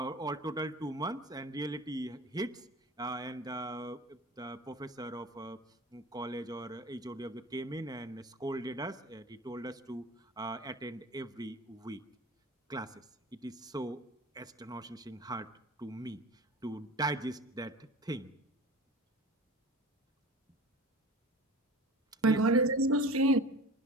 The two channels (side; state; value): both; normal; correlation 0.36